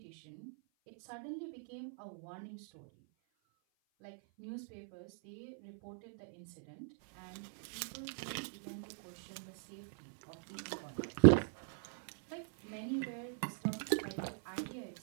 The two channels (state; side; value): silent; left; 51 dB below the other